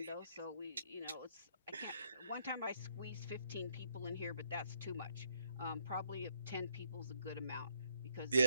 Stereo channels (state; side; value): inverted; both; correlation -0.72